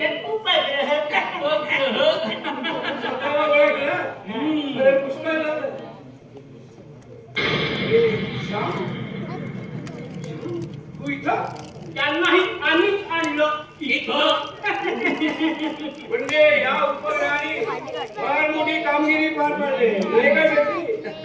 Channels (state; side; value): identical; both; correlation 1.00